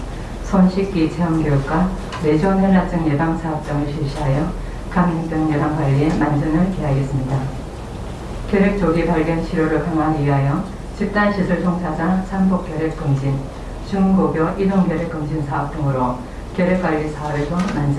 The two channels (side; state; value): both; identical; correlation 1.00